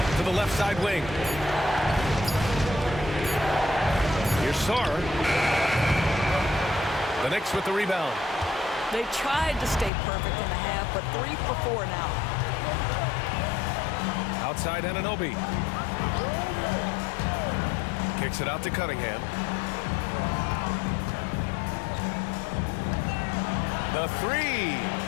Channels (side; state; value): right; drops out; at 9.9 s